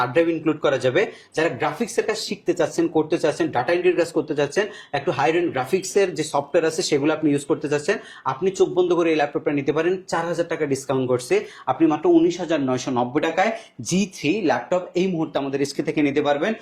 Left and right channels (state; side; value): identical; both; correlation 1.00